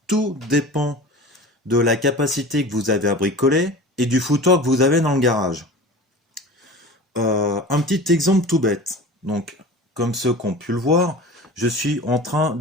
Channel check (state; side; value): normal; both; correlation 0.36